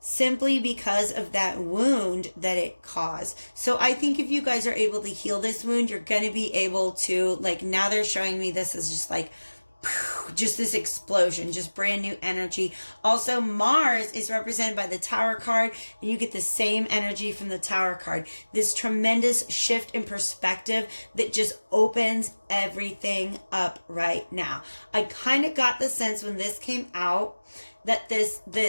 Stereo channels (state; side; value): inverted; both; correlation -1.00